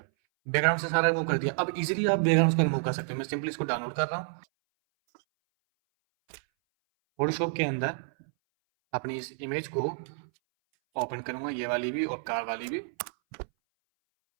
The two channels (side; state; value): left; silent; 58 dB below the other